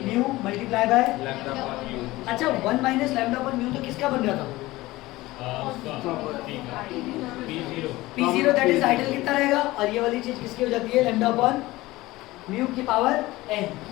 multiply bye, अच्छा 1 माइनस लैम्डा अपॉन म्यू तो किसका बन रहा था, P0 दैट इज आइडियल कितना रहेगा, और ये वाली चीज किसकी हो जाती है, लैम्डा अपॉन म्यू की पावर n।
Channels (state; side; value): quieter; right; 18.8 dB